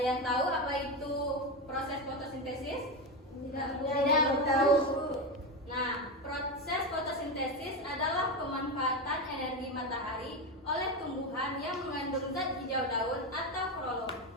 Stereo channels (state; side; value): normal; both; correlation 0.15